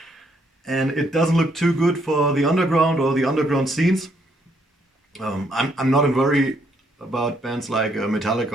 And it doesn't look too good for the underground or the underground scenes. I'm not in worry about bands like Metallica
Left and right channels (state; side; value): normal; both; correlation 0.71